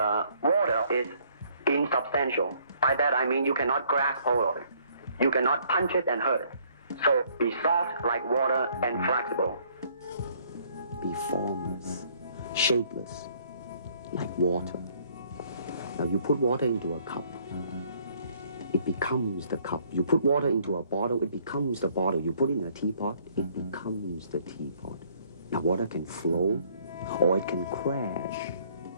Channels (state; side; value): inverted; both; correlation -0.63